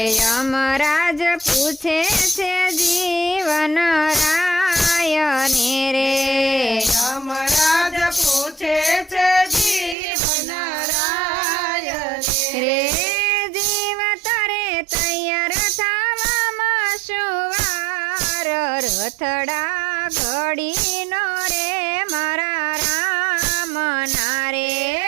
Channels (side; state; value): left; drops out; at 10.0 s